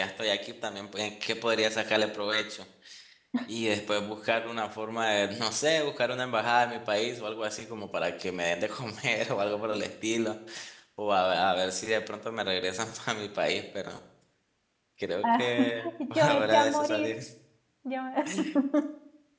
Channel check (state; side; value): identical; both; correlation 1.00